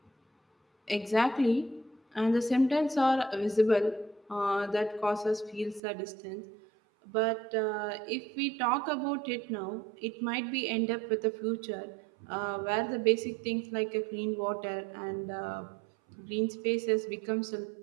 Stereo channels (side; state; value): left; drops out; at 5.8 s